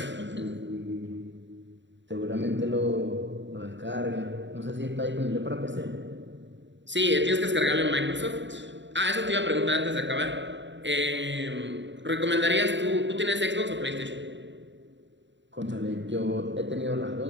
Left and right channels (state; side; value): late; left; 0.53 ms